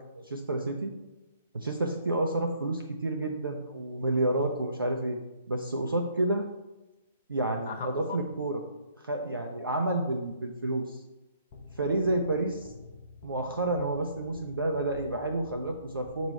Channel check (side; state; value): both; inverted; correlation -0.64